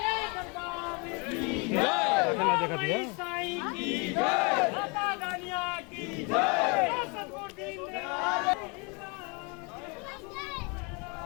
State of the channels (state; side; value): quieter; right; 31.5 dB